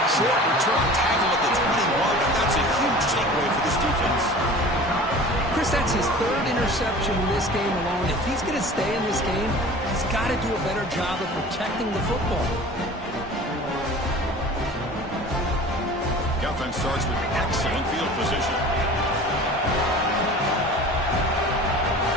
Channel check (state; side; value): normal; both; correlation 0.41